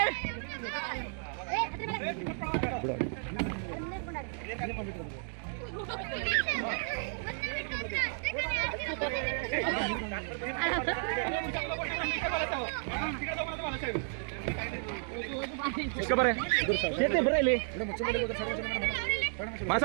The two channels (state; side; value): silent; left; 56 dB below the other